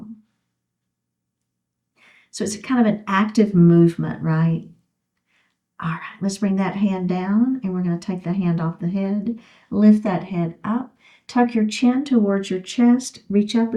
So it's kind of an active movement, right? All right, let's bring that hand down, and we're going to take the hand off the head. Lift that head up. Tuck your chin towards your chest. Reach up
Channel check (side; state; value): both; identical; correlation 1.00